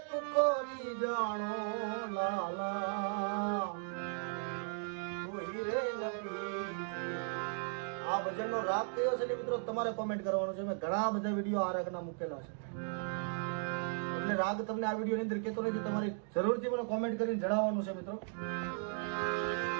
કરી જાણો લાલા કોઈ રે નબી। આ ભજનનો રાગ કયો છે મિત્રો તમારે કોમેન્ટ કરવાનો છે। મેં ઘણા બધા વિડીયો આ રાગના મૂકેલા છે એટલે રાગ તમને આ વિડીયોની અંદર કહેતો નથી, તમારે જરૂરથી મને કોમેન્ટ કરીને જણાવવાનું છે મિત્રો।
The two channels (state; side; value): silent; left; 53 dB below the other